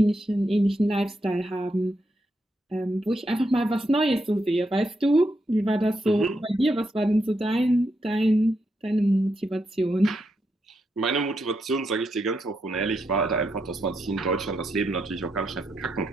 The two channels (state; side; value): normal; both; correlation 0.82